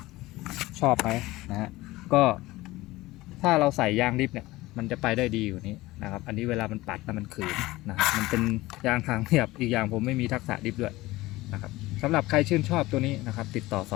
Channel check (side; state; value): right; quieter; 18.9 dB